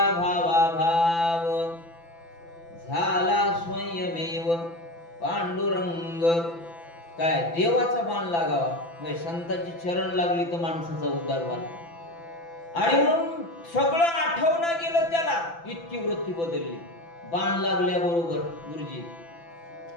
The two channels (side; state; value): right; late; 5.9 ms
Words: भावा भाव, झाला स्वयमेव पांडुरंग. काय देवाचा बाण लागावा म्हणजे संतांची चरण लागली तर माणसाचा उद्धार व्हावा. आणि म्हणून सगळं आठवणं गेलं त्याला, इतकी वृत्ती बदलली बाण लागल्याबरोबर. गुरुजी